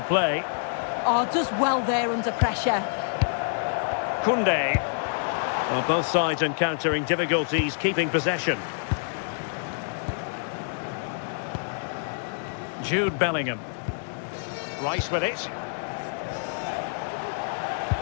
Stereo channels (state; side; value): silent; right; digital silence